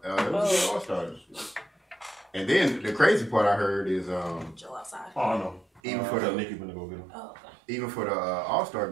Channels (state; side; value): drops out; left; at 5.8 s